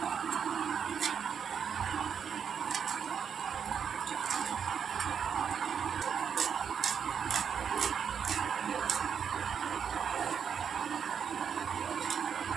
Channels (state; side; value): quieter; left; 7.3 dB